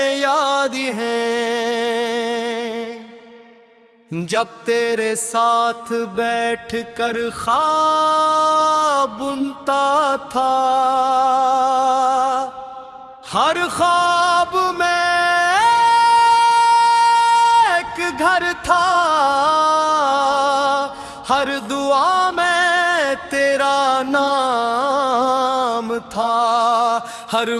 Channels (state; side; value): identical; both; correlation 1.00